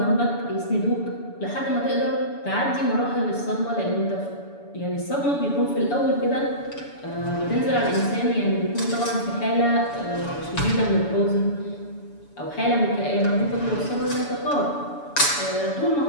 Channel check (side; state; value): right; late; 7.0 ms